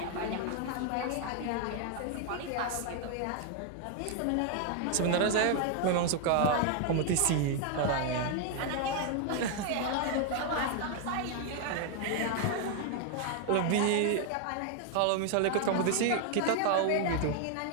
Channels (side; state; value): both; different; correlation 0.00